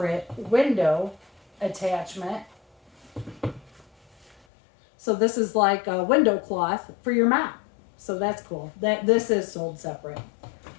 window attachment. So this is like a window cloth for your mop. So that's cool. This is sold separate.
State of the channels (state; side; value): drops out; right; at 4.4 s